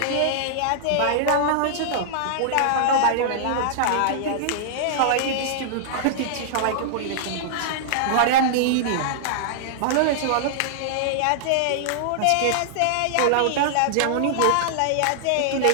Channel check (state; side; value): different; both; correlation -0.01